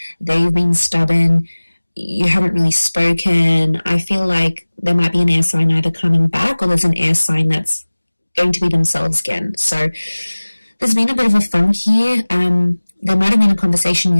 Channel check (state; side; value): inverted; both; correlation -1.00